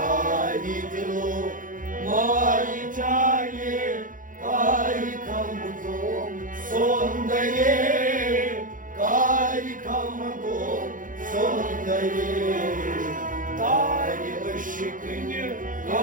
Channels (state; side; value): late; left; 0.39 ms